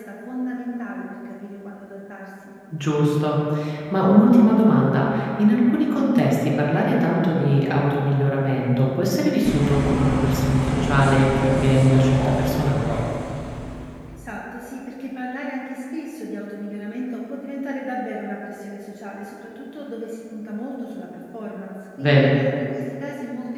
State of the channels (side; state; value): both; identical; correlation 1.00